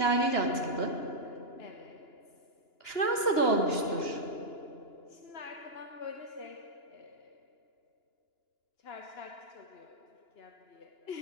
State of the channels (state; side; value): late; right; 2.9 ms